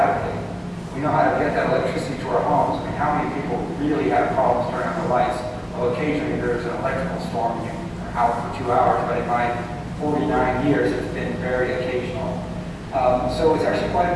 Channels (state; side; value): identical; both; correlation 1.00